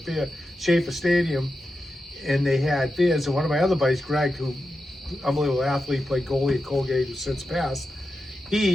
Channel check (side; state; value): both; normal; correlation 0.90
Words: Schaefer Stadium, and they had beers. And one of my other buddies, Greg, who, unbelievable athlete, played goalie at Colgate, who's since passed,